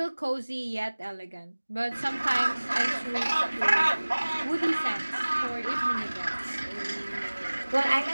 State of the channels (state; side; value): inverted; both; correlation -1.00